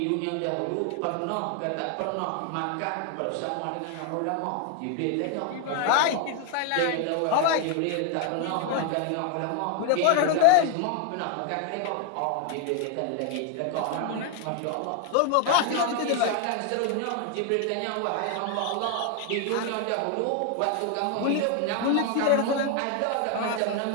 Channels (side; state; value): both; different; correlation 0.01